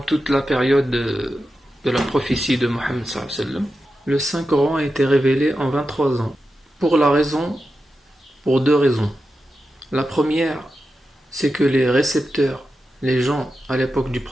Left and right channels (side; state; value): both; normal; correlation 0.90